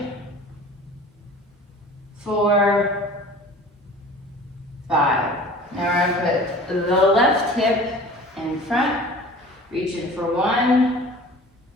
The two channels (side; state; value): both; normal; correlation 0.43